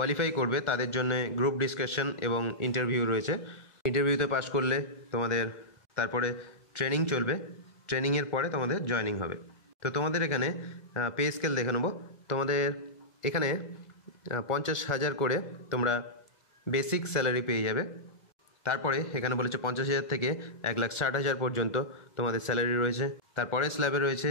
করবে তাদের জন্য গ্রুপ ডিসকাশন এবং ইন্টারভিউ রয়েছে। ইন্টারভিউতে পাস করলে তোমাদের তারপরে ট্রেনিং চলবে, ট্রেনিংয়ের পরে তোমাদের জয়েনিং হবে। তো তোমাদের এখানে পে স্কেল দেখে নেবো। তোমাদের এখানে 50,000 করে তোমরা বেসিক স্যালারি পেয়ে যাবে। তারপরে এখানে বলেছে 50,000 থেকে 1,60,000 পর্যন্ত তোমাদের স্যালারি রয়েছে। তারপরে স্ল্যাবে রয়েছে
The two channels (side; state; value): right; late; 1.4 ms